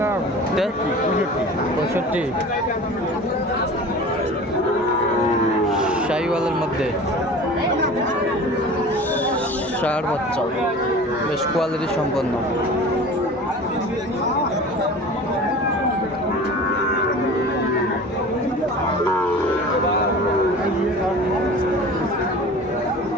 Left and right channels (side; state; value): both; normal; correlation 0.39